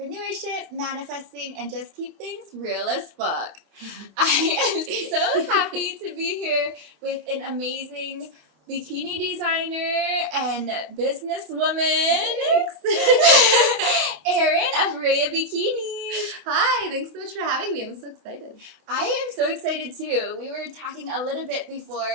manifesting, and just keep things real as fuck. I am so happy to be here with an amazing bikini designer and businesswoman, Erin of Rhea Bikinis. Hi, thanks so much for having me. I'm so excited. I am so excited too. We were talking a little bit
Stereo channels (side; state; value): left; late; 27 ms